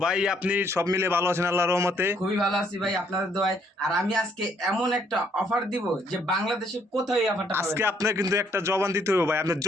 ভাই আপনি সব মিলে ভালো আছেন আল্লাহর রহমতে? খুবই ভালো আছি ভাই আপনাদের দোয়ায়। আর আমি আজকে এমন একটা অফার দিব যে বাংলাদেশের কোথাও এই অফারটা পাবেন আজকে না। আপনার কিন্তু একটা জবান দিতে হবে ভাই, আপনি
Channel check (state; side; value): normal; both; correlation 0.68